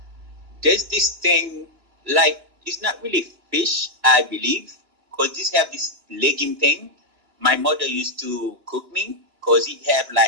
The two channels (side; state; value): left; late; 2.9 ms